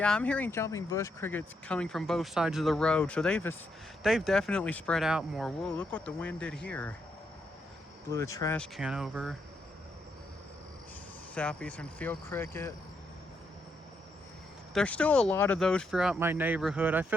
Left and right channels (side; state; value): both; normal; correlation 0.79